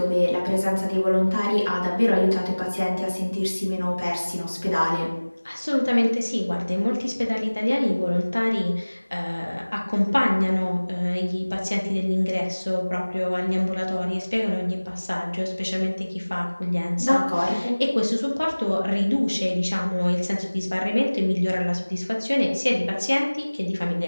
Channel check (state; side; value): inverted; both; correlation -1.00